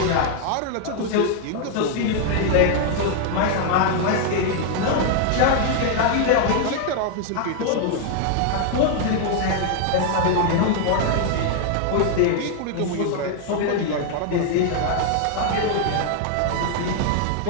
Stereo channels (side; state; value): both; different; correlation 0.00